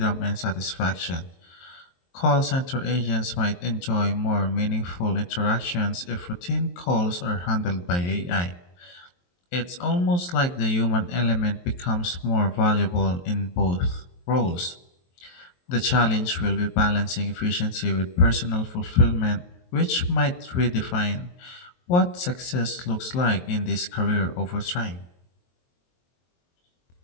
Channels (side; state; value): right; late; 23 ms